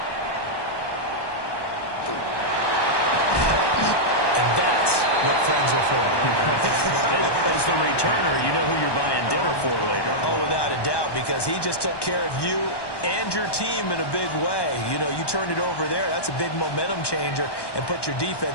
What friends are for. As the returner, you know who you're buying dinner for later. Oh, without a doubt, because he just took care of you and your team in a big way. You know, you turned it over there. That's a big momentum changer and put your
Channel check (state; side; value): late; right; 1.1 ms